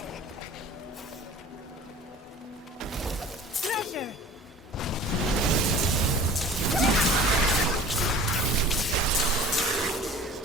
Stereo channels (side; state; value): both; normal; correlation 0.44